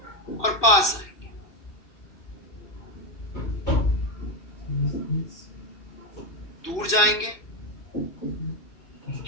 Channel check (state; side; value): late; right; 2.6 ms